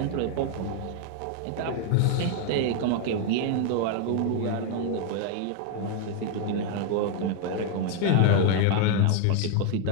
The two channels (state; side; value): different; both; correlation 0.00